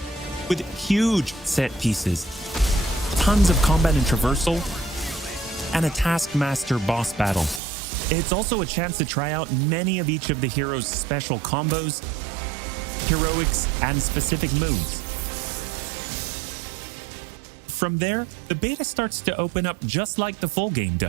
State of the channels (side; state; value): left; drops out; at 7.6 s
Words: with huge set pieces, tons of combat and traversal, and a Taskmaster boss battle. It's also a chance to try out many of each of the heroes' special combos, heroics, and specific moves. From there, the beta starts to open up just like the full game